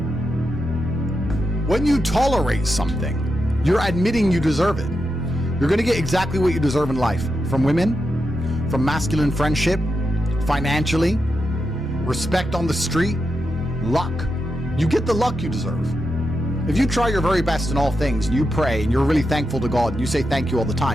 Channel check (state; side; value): normal; both; correlation 0.87